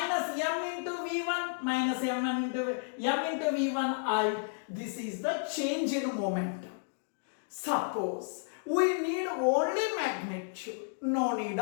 m into v1. Minus m into v1i. This is the change in momentum. Suppose we need only magnitude. No need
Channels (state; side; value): silent; right; digital silence